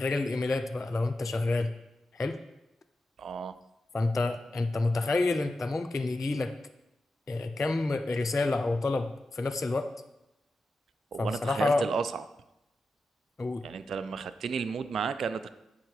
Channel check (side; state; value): both; normal; correlation 0.90